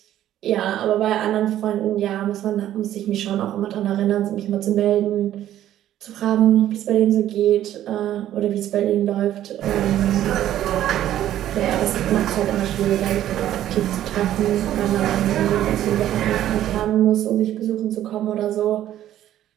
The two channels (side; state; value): left; quieter; 12.3 dB